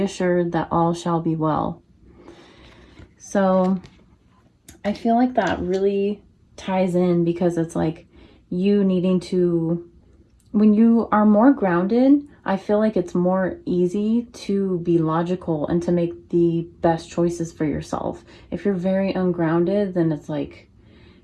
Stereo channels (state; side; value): identical; both; correlation 1.00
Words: that all shall be well. So I feel like that really ties in, because it's like you needing to, when you are more grounded, I feel like it's more easy to be logical and to make the best choices for yourself. If you're very ungrounded, then it's like,